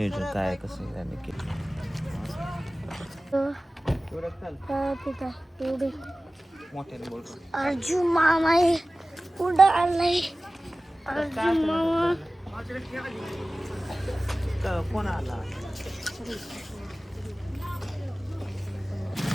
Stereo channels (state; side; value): normal; both; correlation 0.97